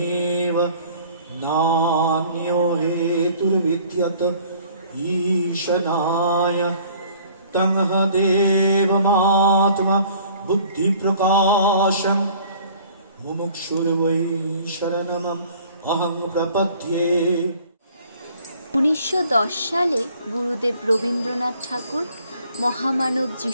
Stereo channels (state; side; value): inverted; both; correlation -0.54